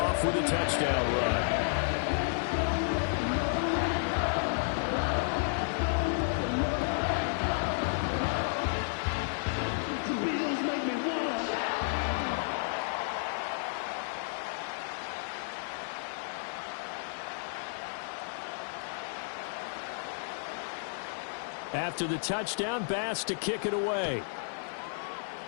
with a touchdown run. After the touchdown, Bass to kick it away.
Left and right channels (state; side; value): silent; right; digital silence